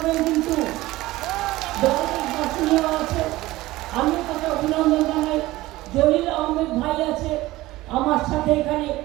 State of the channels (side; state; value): left; quieter; 18.0 dB